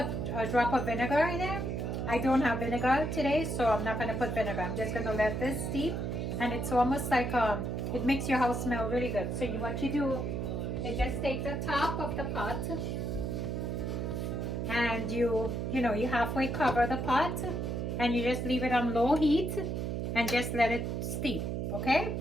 a drop of vinegar in there. I don't have vinegar today, so I'm not going to put vinegar. I'm just going to let this steep, and it's almost like it makes your house smell really good. So what you do is just take the top of the pot, and you halfway cover the pot, and you just leave it on low heat and just let it steep. Okay,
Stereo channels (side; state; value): right; noise; hum, 2 dB below the sound